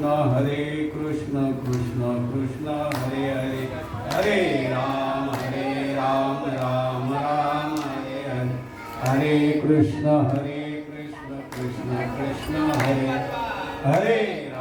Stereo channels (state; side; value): identical; both; correlation 1.00